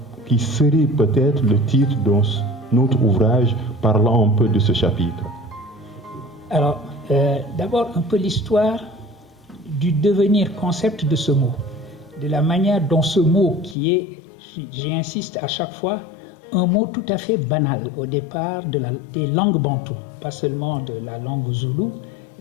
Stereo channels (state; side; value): drops out; right; at 13.8 s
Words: qui serait peut-être le titre de notre ouvrage parlant un peu de ce chapitre? Alors, d'abord un peu l'histoire du devenir concept de ce mot, de la manière dont ce mot qui est, j'insiste à chaque fois, un mot tout à fait banal au départ des langues bantoues, pas seulement de la langue zoulou,